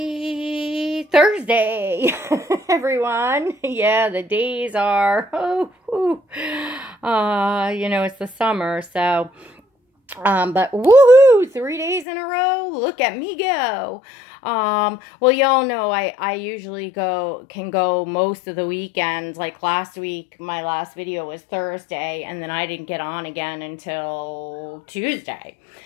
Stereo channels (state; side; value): drops out; right; at 12.1 s